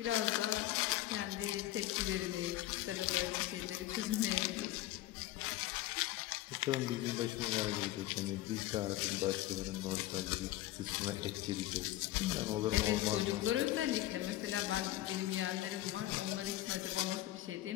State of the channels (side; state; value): right; quieter; 15.6 dB